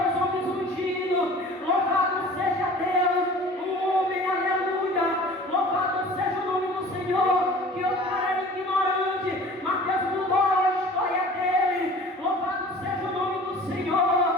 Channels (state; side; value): normal; both; correlation 0.44